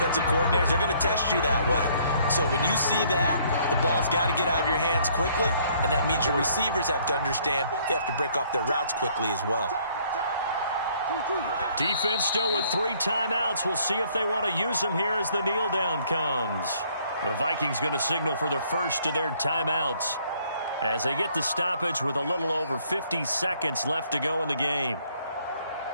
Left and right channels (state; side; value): inverted; both; correlation -0.63